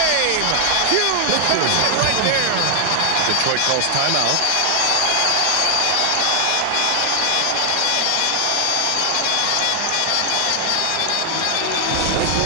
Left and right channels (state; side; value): different; both; correlation 0.00